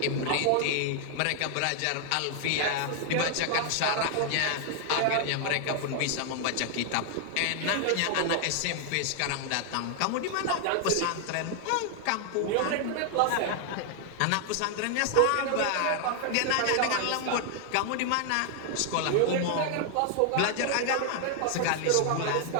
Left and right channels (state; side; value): different; both; correlation 0.00